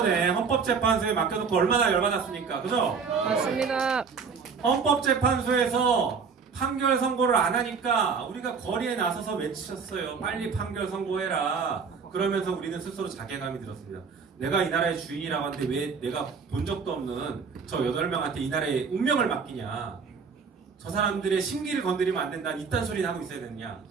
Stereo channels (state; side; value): quieter; left; 5.6 dB